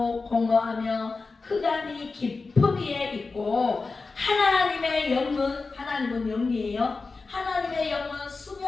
공허하며 흑암이 깊음 위에 있고 하나님의 영은, 하나님은 영이에요. 하나님의 영은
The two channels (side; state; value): right; quieter; 4.1 dB